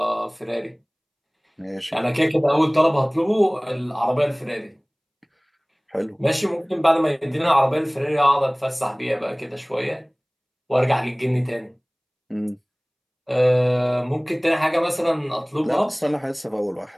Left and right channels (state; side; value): identical; both; correlation 1.00